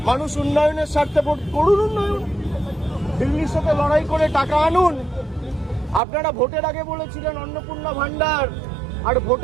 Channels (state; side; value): drops out; left; at 6.0 s